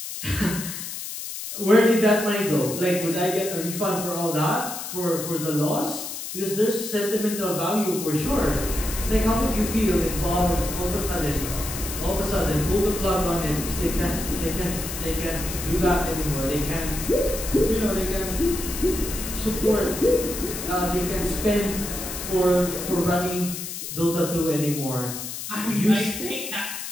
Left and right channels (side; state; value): left; noise; hiss, 7 dB below the sound